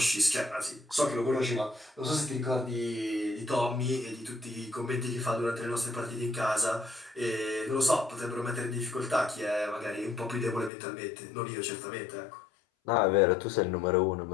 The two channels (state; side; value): drops out; right; at 10.7 s